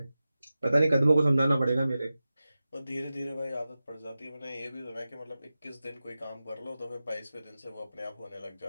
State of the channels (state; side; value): inverted; both; correlation -0.94